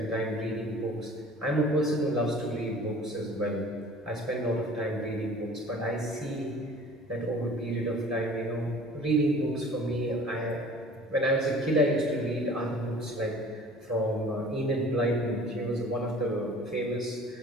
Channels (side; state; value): both; normal; correlation 0.47